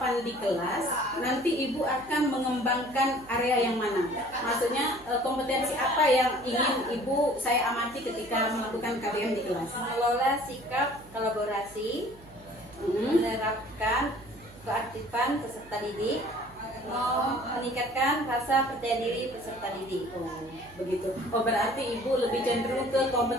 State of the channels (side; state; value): right; noise; hum, 23 dB below the sound